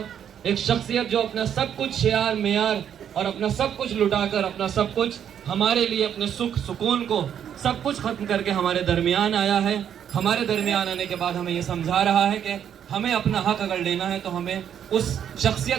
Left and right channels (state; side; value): quieter; left; 9.1 dB